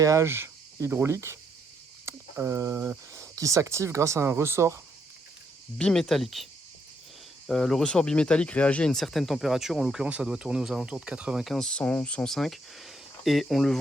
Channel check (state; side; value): normal; both; correlation 0.74